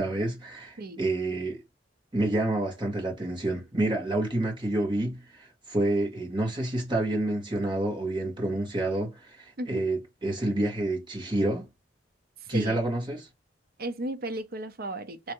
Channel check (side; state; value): both; normal; correlation 0.80